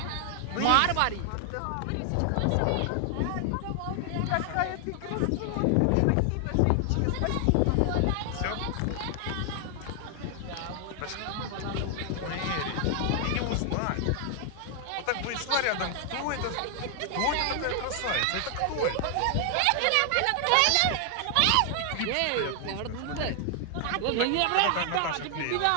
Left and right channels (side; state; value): both; different; correlation 0.00